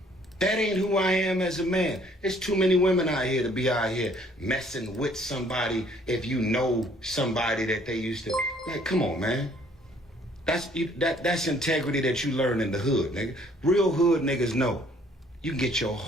That ain't who I am as a man. There's too many women out here to be out here messing with somebody if you know somebody that they used to. Like, come on, man. That's integrity that you learn in the hood, nigga. Real hood niggas know. You can get your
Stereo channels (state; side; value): normal; both; correlation 0.61